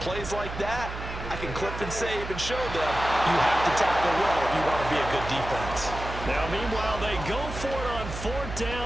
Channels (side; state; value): right; noise; hum, 8 dB below the sound